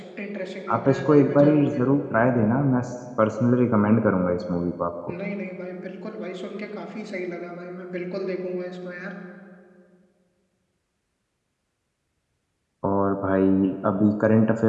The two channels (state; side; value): identical; both; correlation 1.00